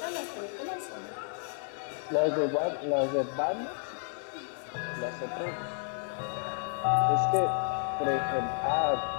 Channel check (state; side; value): silent; right; digital silence